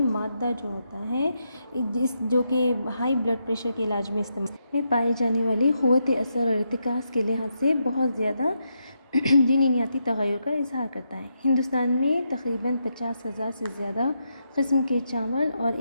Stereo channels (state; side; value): inverted; both; correlation -0.83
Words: مادہ جو ہوتا ہے جو کہ ہائی بلڈ پریشر کے علاج میں استعمال میں پائی جانے والی قوت اثر اور ارتکاز کے لحاظ سے بہت زیادہ جینیاتی تغیر کا اظہار کرتا ہے. ہندوستان میں تقریباً 50,000 سے زیادہ قسم کے چاول اور